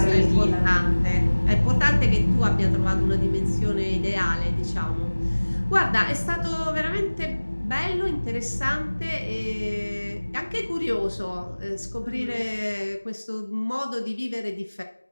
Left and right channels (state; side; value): inverted; both; correlation -1.00